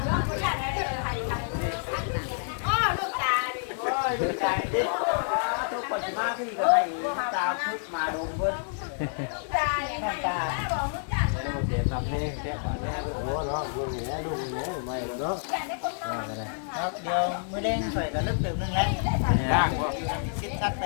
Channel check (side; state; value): right; silent; digital silence